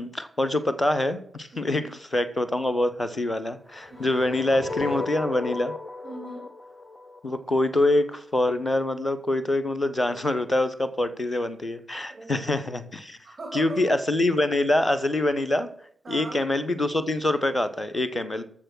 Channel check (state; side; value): normal; both; correlation 0.87